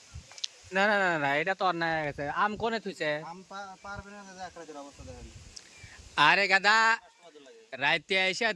না না না না, এটা তো অন্যায় হয়ে গেছে। আম কোনে থুইছে? আরে গাদা, রাইতে আইসা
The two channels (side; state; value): both; identical; correlation 1.00